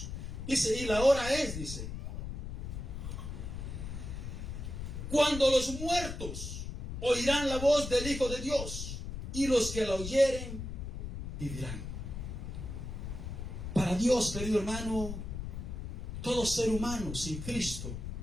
Dice, y la hora es, dice, cuando los muertos oirán la voz del Hijo de Dios, y los que la oyeren vivirán. Para Dios, querido hermano, todo ser humano sin Cristo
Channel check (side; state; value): left; noise; rumble, 6 dB below the sound